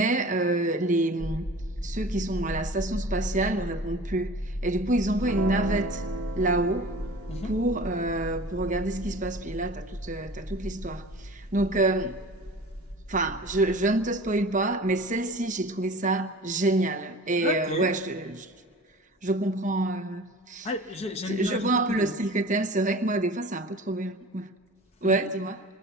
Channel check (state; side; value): normal; both; correlation 0.40